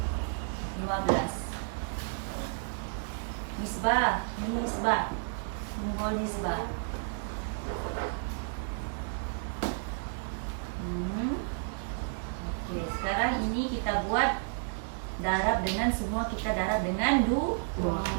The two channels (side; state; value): left; silent; digital silence